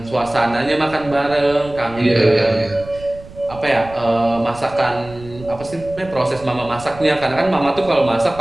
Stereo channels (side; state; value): right; noise; rumble, 18 dB below the sound